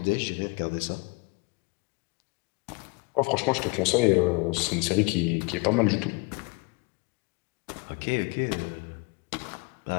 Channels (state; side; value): quieter; right; 28.2 dB